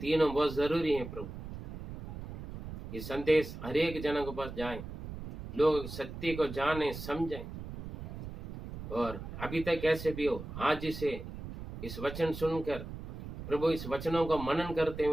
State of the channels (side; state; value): right; noise; rumble, 10 dB below the sound